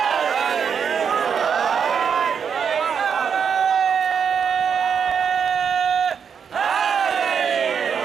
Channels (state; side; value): quieter; left; 6.9 dB